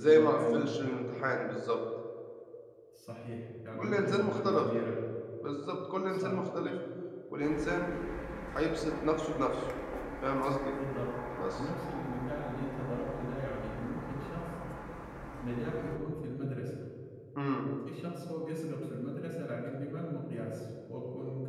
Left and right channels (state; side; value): identical; both; correlation 1.00